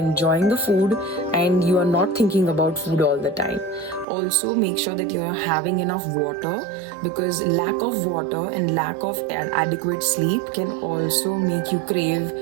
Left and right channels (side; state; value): left; drops out; at 4.0 s